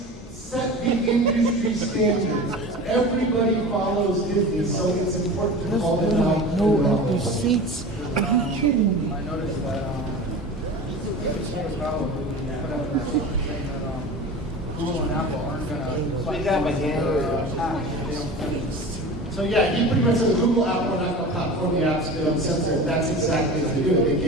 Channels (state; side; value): normal; both; correlation 0.34